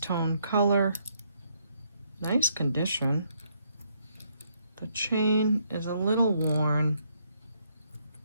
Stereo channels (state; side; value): inverted; both; correlation -0.73